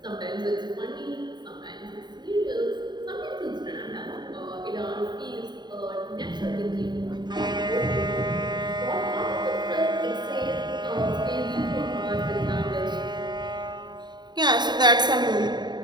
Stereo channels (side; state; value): left; late; 0.21 ms